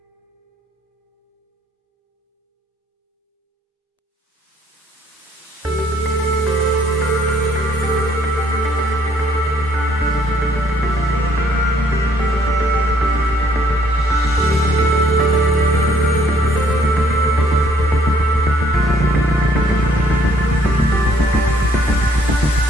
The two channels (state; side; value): normal; both; correlation 0.65